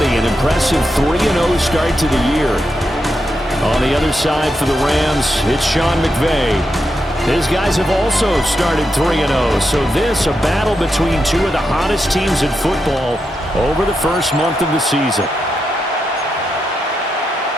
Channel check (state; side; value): normal; both; correlation 0.85